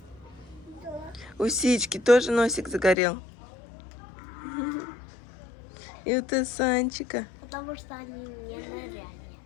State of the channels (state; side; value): drops out; right; at 3.0 s